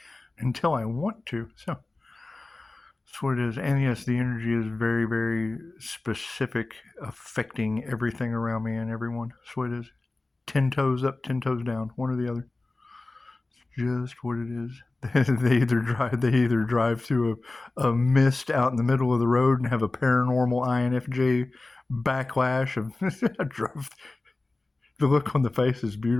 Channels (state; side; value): quieter; right; 3.1 dB